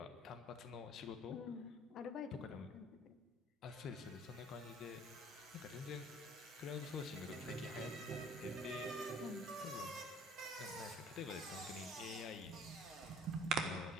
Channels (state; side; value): normal; both; correlation 0.53